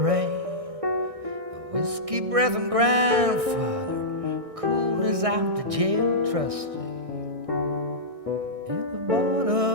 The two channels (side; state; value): left; late; 1.6 ms